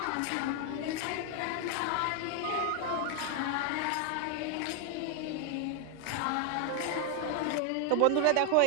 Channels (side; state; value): both; different; correlation 0.00